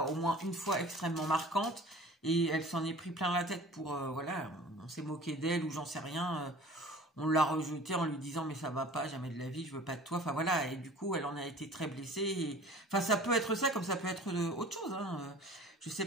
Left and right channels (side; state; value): both; normal; correlation 0.44